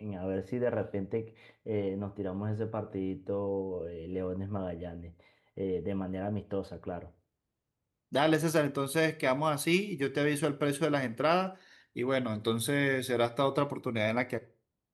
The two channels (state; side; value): identical; both; correlation 1.00